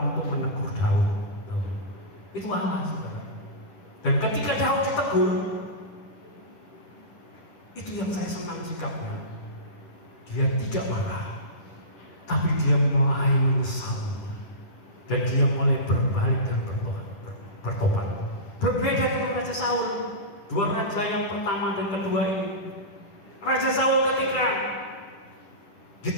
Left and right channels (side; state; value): right; late; 10 ms